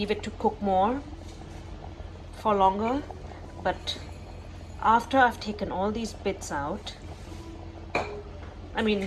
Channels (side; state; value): both; identical; correlation 1.00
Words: it to cook more for longer. But after I've taken all these bits out, I